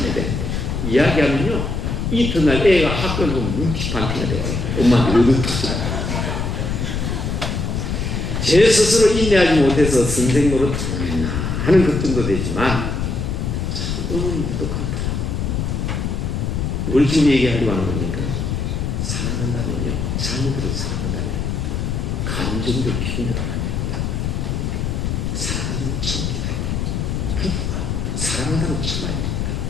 되는데. 이야기하면요, 이튿날 애가 학교를 보면 문티판티가 돼요. 엄마한테 얻어터져요. 제 스스로 인내하지 못해서 선생 노릇 하는 것 정도 되지만 너무 무뚝하더라. 뭘 지금 얘기하려고 하는 겁니까? 사랑한다면요, 자녀들을 사랑한다면 감정들 힘들어야 됩니다. 사랑하는 참기다. 부부가 사랑한다면 참아야 됩니다.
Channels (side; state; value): left; noise; rumble, 1 dB below the sound